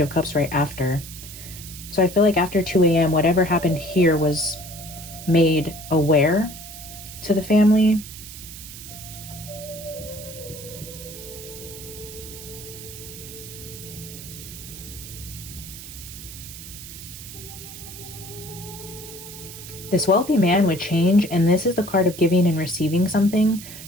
of Cups right after. So I feel like after 2 a.m. whatever happened here was made aware to the family. This wealthy man would change, and this is the card of giving and receiving something.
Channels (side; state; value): right; noise; hiss, 13 dB below the sound